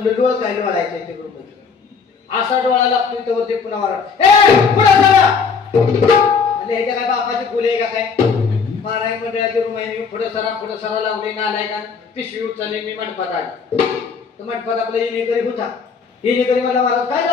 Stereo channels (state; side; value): quieter; right; 5.6 dB